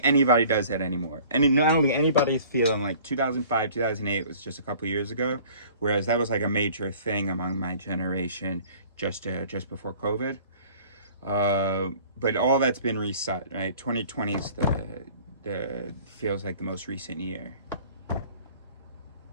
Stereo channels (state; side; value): inverted; both; correlation -0.50